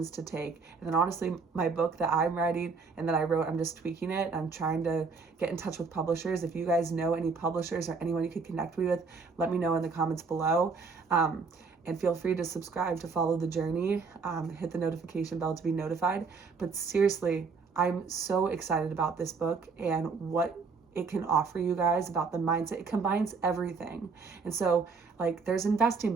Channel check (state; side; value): quieter; left; 4.8 dB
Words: to take. And then honestly, my book that I'm writing and that I wrote, I'm just tweaking it. I'm trying to get in touch with publishers. If you guys know any publishers or anyone you could connect me with, let me know in the comments below. And feel free to subscribe to follow the journey. Hit the notification bell to be notified. But seriously, I'm so excited about this book and what it can offer you guys about the mindset. It combines everything. And so, like, there's investing